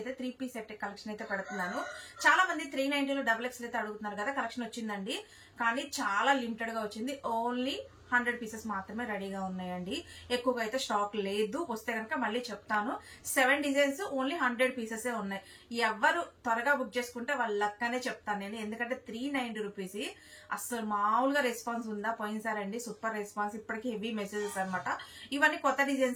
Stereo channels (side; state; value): both; identical; correlation 1.00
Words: అయితే 3 పీస్ సెట్ కలెక్షన్ అయితే పెడుతున్నాను. చాలా మంది 390లో XXL అయితే అడుగుతున్నారు కదా. కలెక్షన్ వచ్చిందండి, కానీ చాలా లిమిటెడ్ గా వచ్చింది. ఓన్లీ 100 పీసెస్ మాత్రమే రెడీగా ఉన్నాయండి. ఎక్కువగా అయితే స్టాక్ లేదు. వస్తే కనుక మళ్ళీ చెప్తాను. 7 డిజైన్స్, ఓన్లీ 100 పీసెస్ ఉన్నాయి. ఎవరు త్వరగా బుక్ చేసుకుంటే వాళ్ళ లక్కనే చెప్తాను నేను. ఎందుకంటే 390 రూపీస్ అసలు మామూలుగా రెస్పాన్స్ ఉందా? పోయినసారండి సూపర్ రెస్పాన్స్. ఇప్పటికీ హెవీ మెసేజెస్ అనమాట. ఇవన్నీ కొత్త